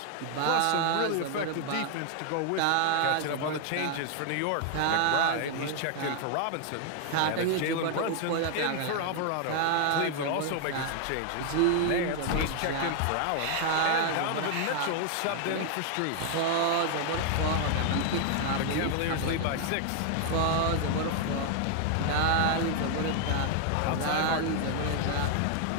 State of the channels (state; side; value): different; both; correlation 0.00